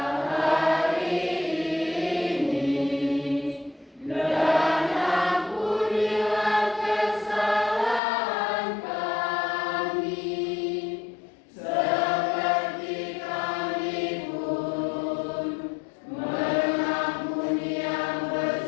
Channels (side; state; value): right; drops out; at 8.0 s